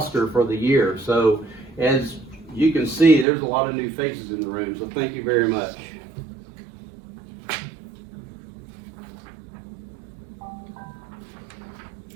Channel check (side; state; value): left; drops out; at 3.2 s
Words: for the year. So as you can see, there's a lot of new faces in the room. So thank you very much.